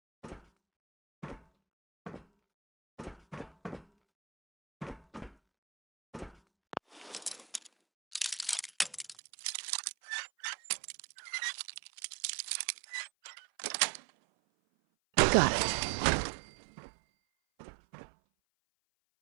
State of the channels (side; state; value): left; drops out; at 9.2 s